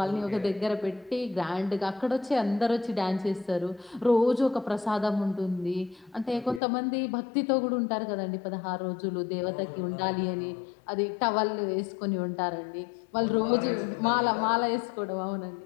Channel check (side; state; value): right; drops out; at 6.6 s